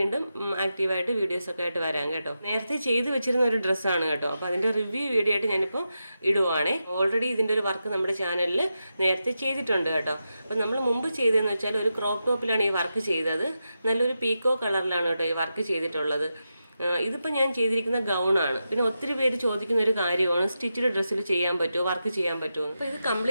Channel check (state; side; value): inverted; both; correlation -0.89